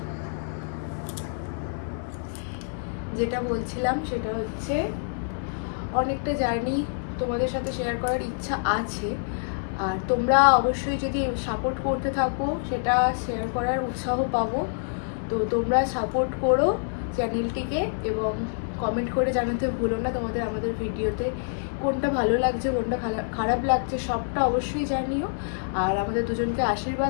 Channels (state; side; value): silent; right; 56 dB below the other